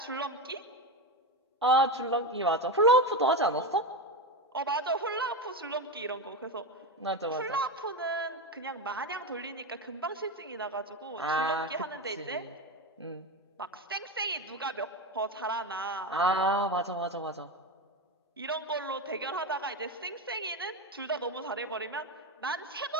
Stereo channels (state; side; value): normal; both; correlation 0.17